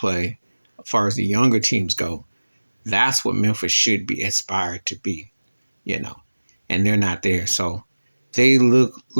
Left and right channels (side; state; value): both; inverted; correlation -1.00